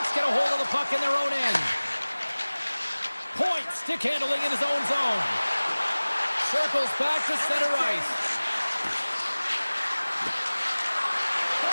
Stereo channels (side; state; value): both; inverted; correlation -1.00